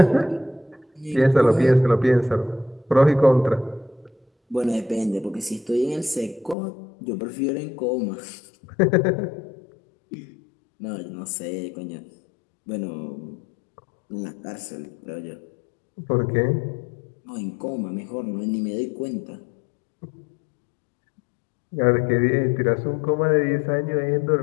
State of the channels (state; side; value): drops out; right; at 6.6 s